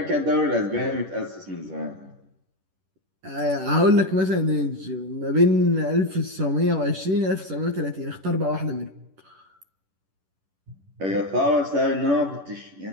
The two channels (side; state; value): left; late; 10 ms